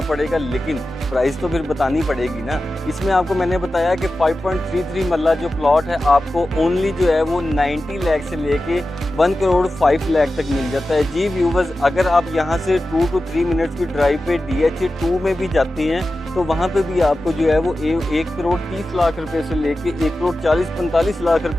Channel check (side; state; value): both; normal; correlation 0.94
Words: पड़ेगा, लेकिन प्राइस तो फिर बतानी पड़ेगी ना। इसमें आपको मैंने बताया कि 5.33 मरला जो प्लॉट है आपको ओनली जो है वो 90 लाख से लेके 1 करोड़ 5 लाख तक मिल जाता है। जी व्यूवर्स, अगर आप यहाँ से 2 to 3 मिनट्स की ड्राइव पे DHA 2 में भी जाते हैं तो वहाँ पे भी आपको जो है वो 1 करोड़ 30 लाख रुपए से लेके 1 करोड़ 40-45 लाख